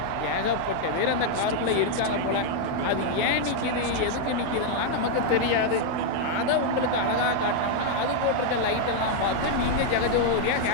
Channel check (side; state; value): both; different; correlation 0.00